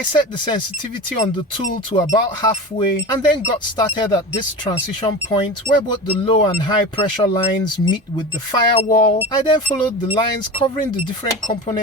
set the sensitivity on the tool to about halfway and then got started at this transition point where both the low and high pressure lines meet with the firewall. I then followed the lines covering the different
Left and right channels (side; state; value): both; normal; correlation 0.29